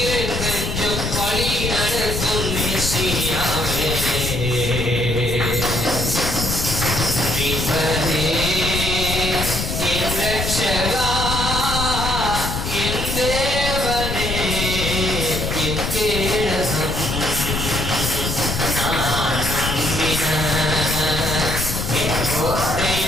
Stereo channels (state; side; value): noise; left; rumble, 3 dB below the sound